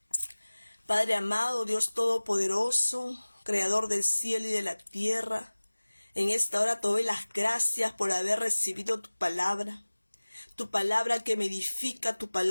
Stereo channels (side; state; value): both; inverted; correlation -1.00